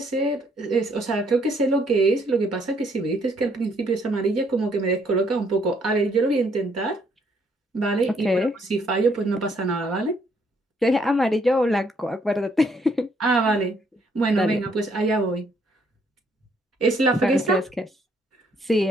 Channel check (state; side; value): normal; both; correlation 0.68